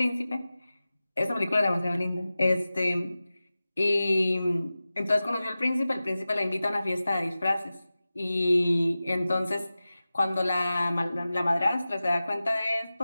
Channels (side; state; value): both; inverted; correlation -0.96